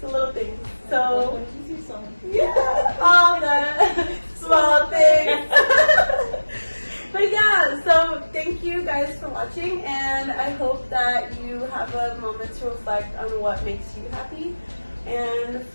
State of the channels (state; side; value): inverted; both; correlation -1.00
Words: a little thing. Like So when you see someone. yeah, all the small things. But yeah, so thank you guys for watching, and I hope that you have a moment to reflect on what makes you happy. And